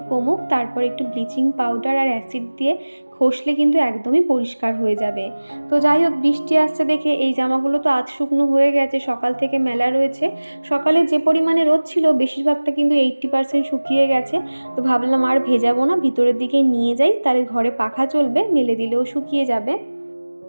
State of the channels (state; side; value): inverted; both; correlation -1.00